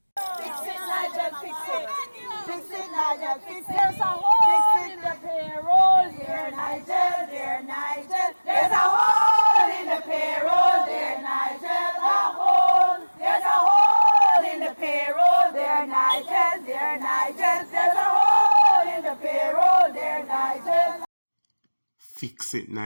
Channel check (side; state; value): both; inverted; correlation -1.00